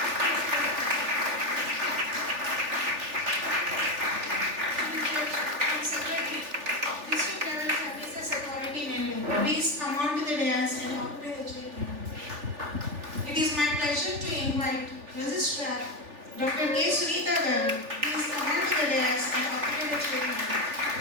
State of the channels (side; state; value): left; late; 3.4 ms